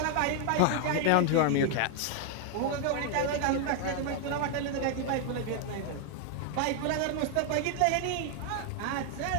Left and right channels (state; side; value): different; both; correlation 0.00